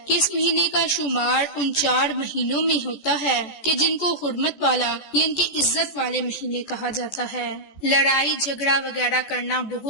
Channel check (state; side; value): late; right; 14 ms